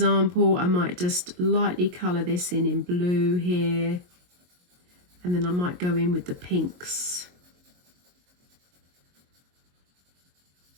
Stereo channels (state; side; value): late; left; 22 ms